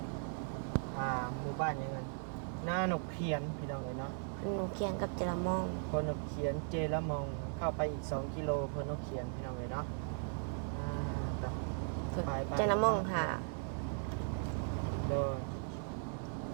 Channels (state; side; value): silent; left; 52 dB below the other